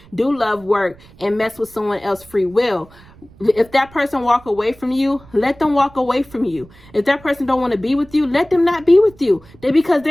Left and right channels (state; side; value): noise; right; rumble, 24 dB below the sound